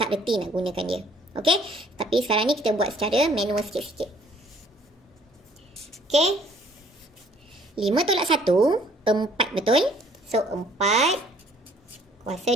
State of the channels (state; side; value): normal; both; correlation 0.59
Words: reti nak gunakan dia. Okey? Tapi sekarang ni kita buat secara manual sikit-sikit. Okey? 5 tolak 1, 4 betul? So 4 kuasa